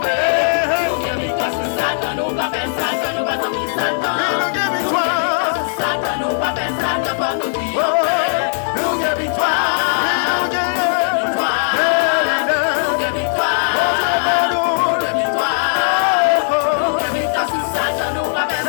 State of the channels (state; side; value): silent; right; digital silence